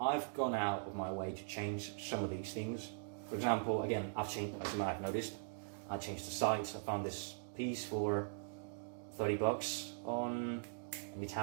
gone out of my way to change some of these things. For example, again, I've changed, as you might have noticed, I changed the sights. I found this piece for $30 on an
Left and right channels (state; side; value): silent; left; digital silence